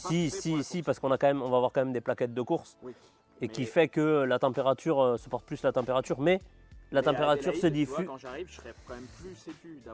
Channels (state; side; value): identical; both; correlation 1.00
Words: faits pour la course. Si, parce qu'on a quand même, on va avoir quand même des plaquettes de course. Oui, Et mais, qui fait que la température supporte plus la température, mais la mais à température Adélaïde, se tu vois, diffuse. quand j'arrive, je serais quand même plus sécu